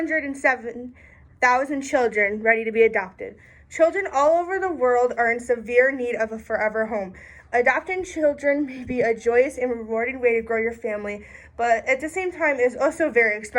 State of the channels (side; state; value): both; identical; correlation 1.00